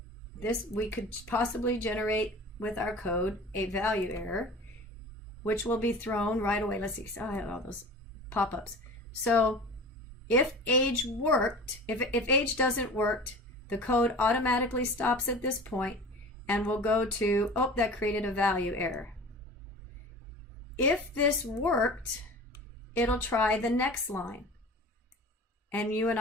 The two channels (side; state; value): both; normal; correlation 0.38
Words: this, we could possibly generate with our code a value error, which will be thrown right away. Let's see, I have all those pop-ups. So if age worked, if age doesn't work, the code automatically stops at this point and will go to, oh, that created a value error. If this worked, it'll try the next line. And you and